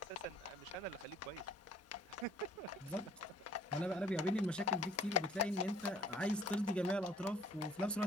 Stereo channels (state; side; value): normal; both; correlation 0.56